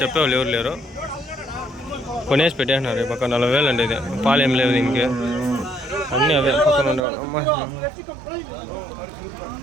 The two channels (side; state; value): left; drops out; at 7.1 s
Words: చెప్పేవాళ్ళు ఎవరు లేరు. కొనేసి పెట్టేసినారు ఈ పక్క. 40,000 అండి ఇది. పాలు ఏం లేదు ఇంకే, అన్నీ అవే పక్కన ఉండేవాళ్ళు. అమ్మ,